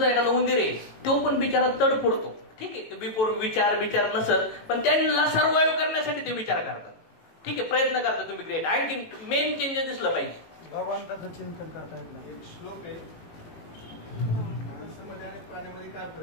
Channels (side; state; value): right; late; 18 ms